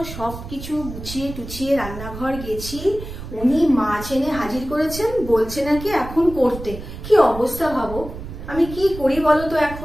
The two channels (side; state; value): right; noise; rumble, 11 dB below the sound